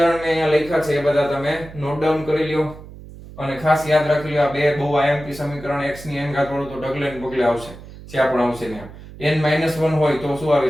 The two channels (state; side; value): noise; right; hum, 16 dB below the sound